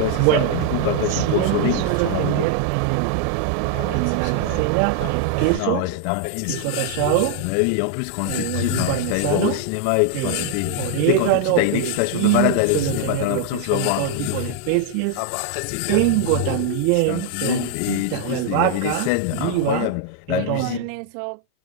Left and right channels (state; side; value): different; both; correlation 0.00